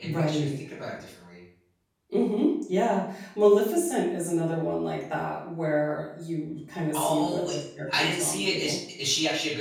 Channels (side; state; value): both; identical; correlation 1.00